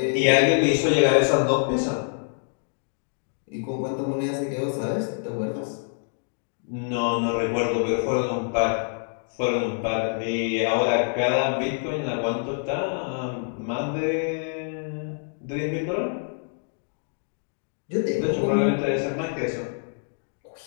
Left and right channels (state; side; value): silent; right; digital silence